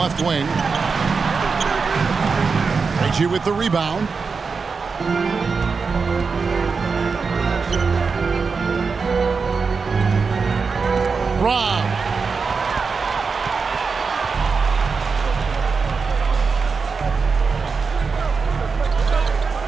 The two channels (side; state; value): left; quieter; 5.0 dB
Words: wing. Reggie with the rebound. Rob.